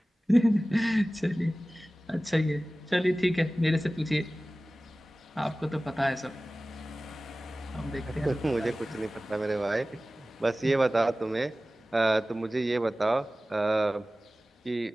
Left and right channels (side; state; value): both; normal; correlation 0.97